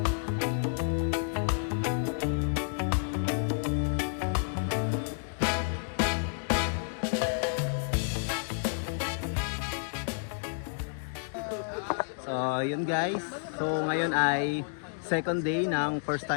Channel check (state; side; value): silent; right; digital silence